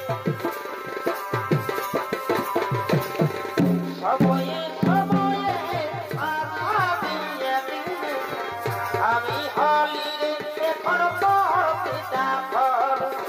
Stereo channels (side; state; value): both; identical; correlation 1.00